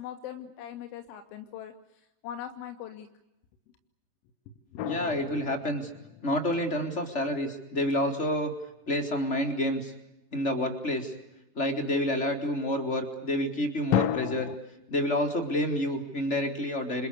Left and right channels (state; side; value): late; right; 3.4 ms